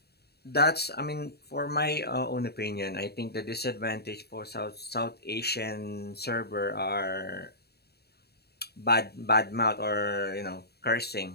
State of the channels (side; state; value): right; late; 0.47 ms